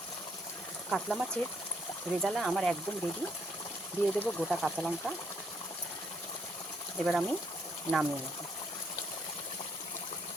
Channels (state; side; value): normal; both; correlation 0.71